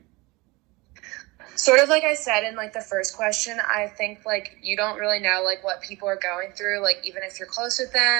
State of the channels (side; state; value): left; quieter; 23.9 dB